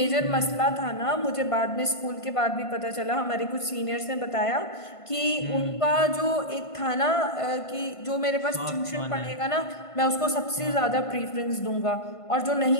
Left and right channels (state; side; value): late; right; 1.5 ms